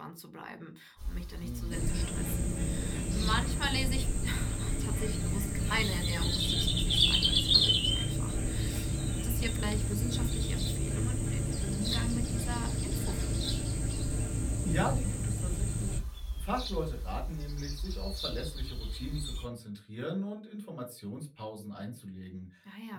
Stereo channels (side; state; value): both; identical; correlation 1.00